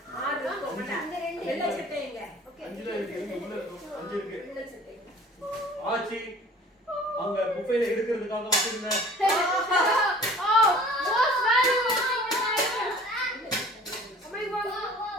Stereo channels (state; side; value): normal; both; correlation 0.47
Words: 6 தான் போட்டேன். அந்த 2 வெள்ளை சட்டைங்க. ஓகே. 5 தான் இருக்கு. உள்ள 5 இருக்கு. வெள்ளை சட்டைங்க. ஆச்சி அங்க புஃபேல எடுக்கிறதுக்காக வச்சிருங்க.